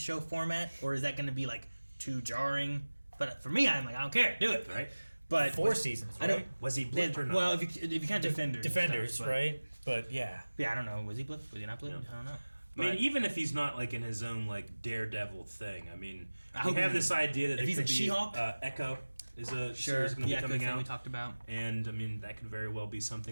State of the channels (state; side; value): inverted; both; correlation -1.00